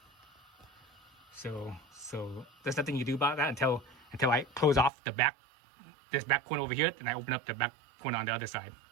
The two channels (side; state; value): left; drops out; at 4.9 s